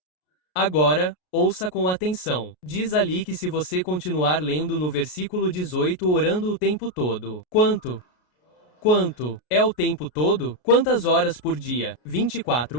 Agora, ouça com atenção. Diz ali que se você continuar lendo no versículo 18 orando o tempo todo. Quanto? É o tempo todo? Quantas horas por dia?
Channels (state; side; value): late; right; 33 ms